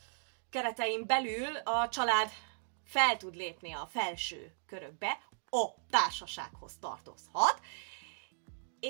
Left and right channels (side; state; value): left; silent; digital silence